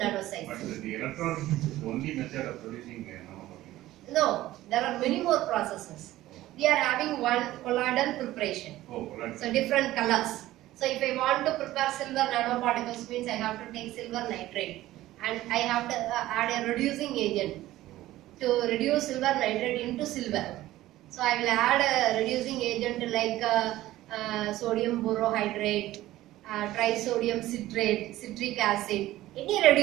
size. But the electronics is the only method of producing nanoparticles. No, there are many more processes. We are having one colloidal preparation. Oh, colloidal. So different colors. So if I want to prepare silver nanoparticles, means I have to take silver nitrate and I have to add a reducing agent to reduce silver nitrate into silver. So I will add a reducing agent like sodium borohydrate, trisodium citrate, citric acid, any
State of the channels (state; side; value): quieter; left; 15.7 dB